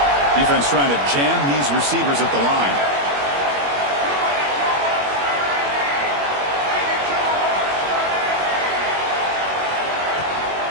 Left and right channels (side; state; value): left; late; 21 ms